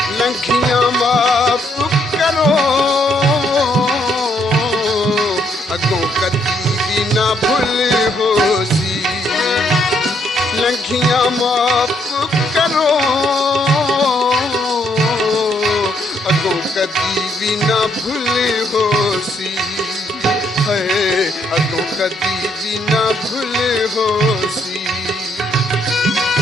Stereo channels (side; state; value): both; normal; correlation 0.72